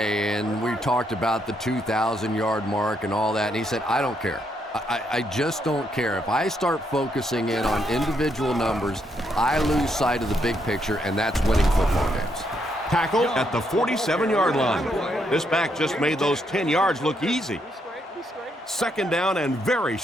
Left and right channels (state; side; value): normal; both; correlation 0.76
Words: and we talked about the 2,000-yard mark and all that, and he said, I don't care. I just don't care. If I start focusing in on individual numbers, I lose sight of the big picture, and that's winning football games. Tackle at the 47-yard line. This back just made those 10 yards look easy. Second down and very